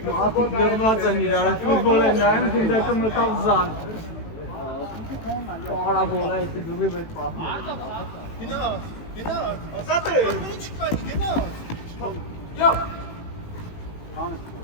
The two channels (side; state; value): right; late; 18 ms